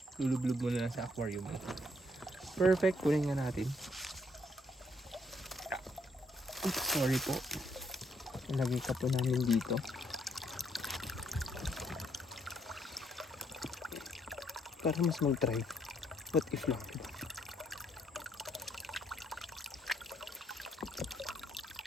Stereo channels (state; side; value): normal; both; correlation 0.71